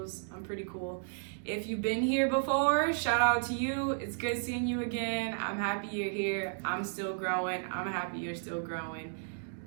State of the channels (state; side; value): silent; left; digital silence